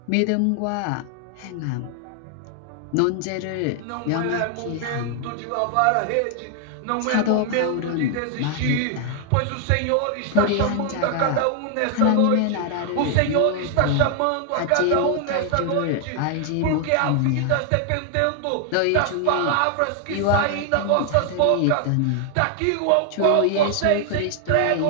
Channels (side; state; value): both; different; correlation 0.00